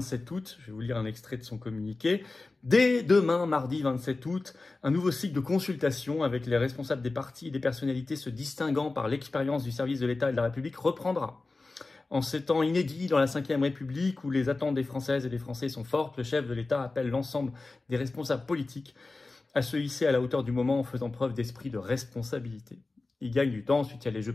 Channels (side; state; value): right; quieter; 3.5 dB